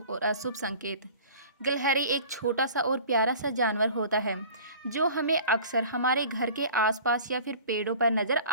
और अशुभ संकेत। गिलहरी एक छोटा सा और प्यारा सा जानवर होता है जो हमें अक्सर हमारे घर के आसपास या फिर पेड़ों पर नजर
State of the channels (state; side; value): inverted; both; correlation -0.44